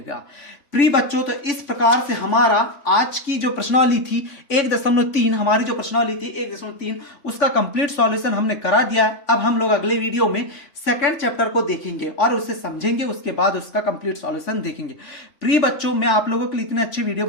प्रिय बच्चों, तो इस प्रकार से हमारा आज की जो प्रश्नावली थी 1.3, हमारी जो प्रश्नावली थी 1.3, उसका कंप्लीट सॉल्यूशन हमने करा दिया है। अब हम लोग अगले वीडियो में सेकंड चैप्टर को देखेंगे और उसे समझेंगे, उसके बाद उसका कंप्लीट सॉल्यूशन देखेंगे। प्रिय बच्चों, मैं आप लोगों के लिए इतने अच्छी वीडियो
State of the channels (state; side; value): late; right; 3.4 ms